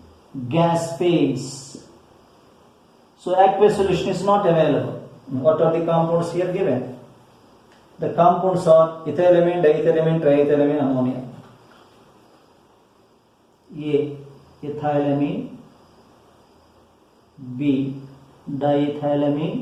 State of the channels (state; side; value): identical; both; correlation 1.00